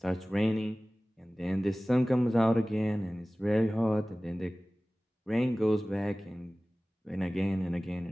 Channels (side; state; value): both; normal; correlation 0.98